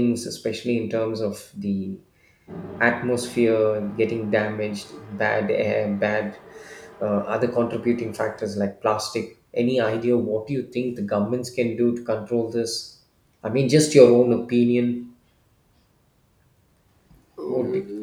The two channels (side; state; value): both; identical; correlation 1.00